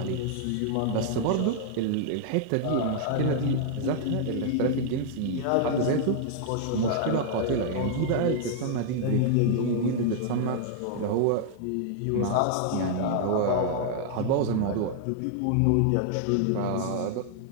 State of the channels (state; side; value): different; both; correlation -0.01